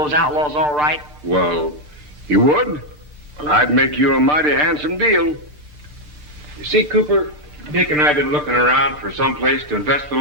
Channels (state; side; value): normal; both; correlation 0.01